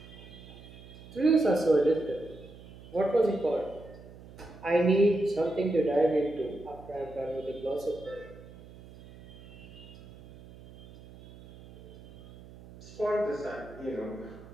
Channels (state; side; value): noise; right; hum, 18 dB below the sound